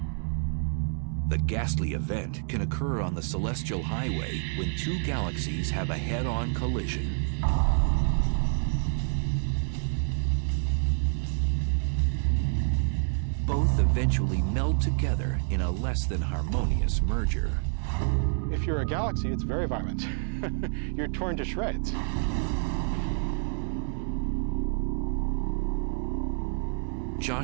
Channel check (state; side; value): silent; left; 59 dB below the other